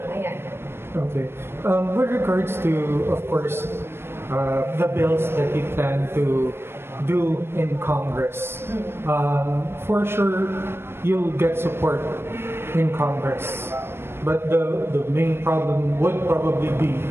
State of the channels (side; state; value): left; late; 0.12 ms